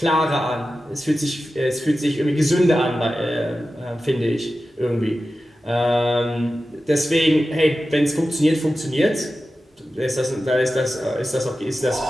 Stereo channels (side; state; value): both; normal; correlation 0.93